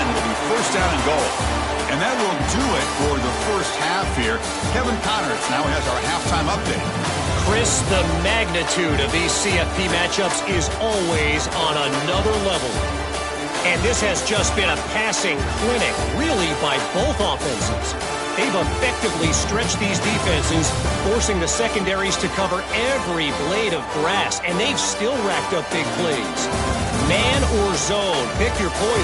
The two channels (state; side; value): identical; both; correlation 1.00